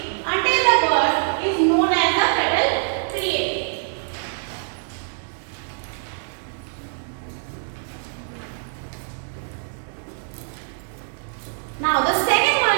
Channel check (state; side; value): silent; left; digital silence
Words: until the birth is known as the fetal period. Now the second